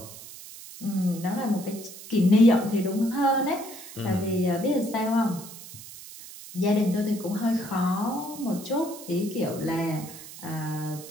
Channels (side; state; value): right; noise; hiss, 15 dB below the sound